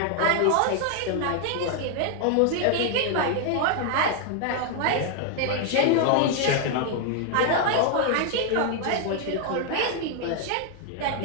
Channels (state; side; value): different; both; correlation 0.00